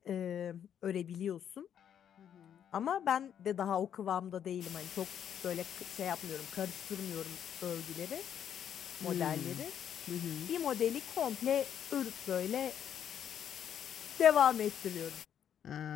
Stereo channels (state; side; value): quieter; right; 9.2 dB